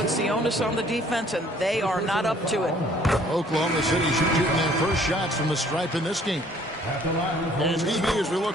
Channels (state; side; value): normal; both; correlation 0.58